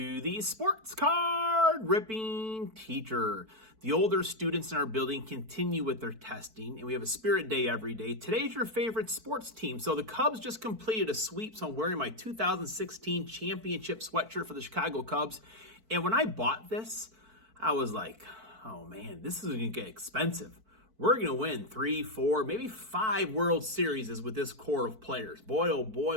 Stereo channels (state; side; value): late; left; 4.5 ms